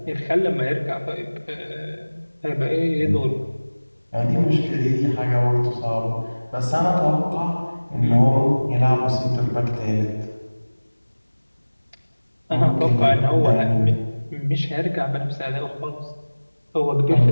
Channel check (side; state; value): both; inverted; correlation -1.00